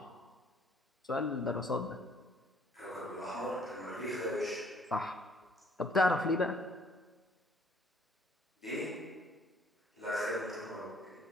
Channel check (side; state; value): both; normal; correlation 0.61